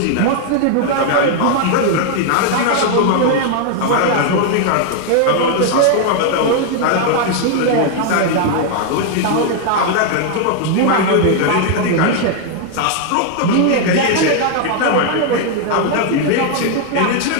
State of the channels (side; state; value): both; different; correlation 0.00